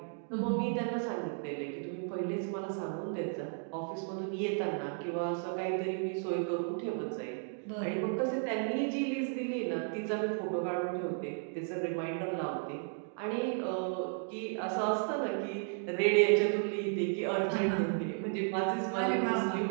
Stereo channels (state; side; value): silent; left; 55 dB below the other